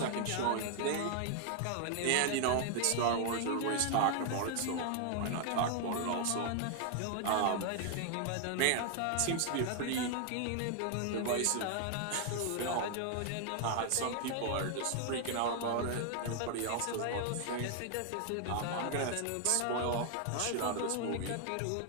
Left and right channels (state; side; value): different; both; correlation 0.00